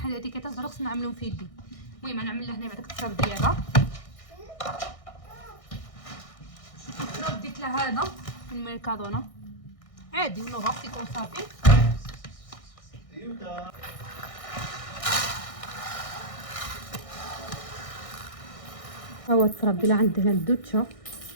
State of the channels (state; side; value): late; right; 1.6 ms